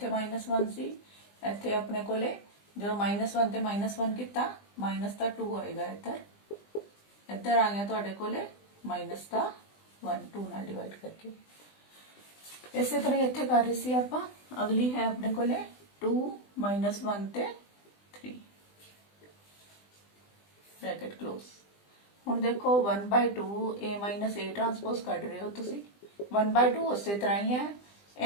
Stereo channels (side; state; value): right; late; 20 ms